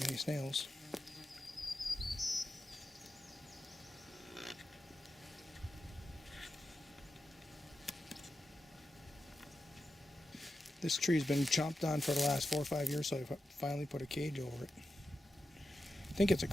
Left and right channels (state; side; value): normal; both; correlation 0.90